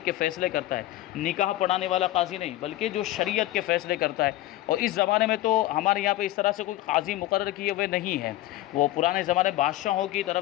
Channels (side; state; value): right; quieter; 15.7 dB